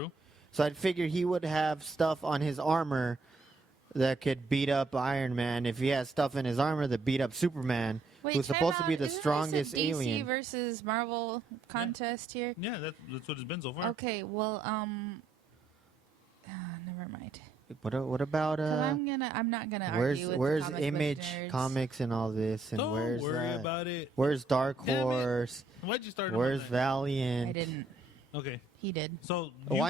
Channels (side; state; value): left; quieter; 3.4 dB